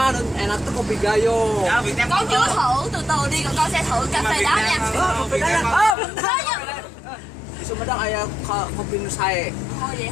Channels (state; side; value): drops out; right; at 6.0 s